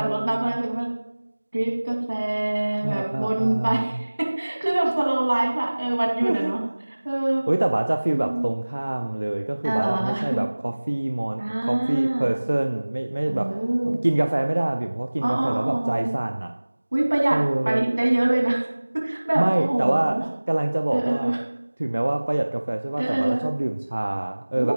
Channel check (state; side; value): inverted; both; correlation -1.00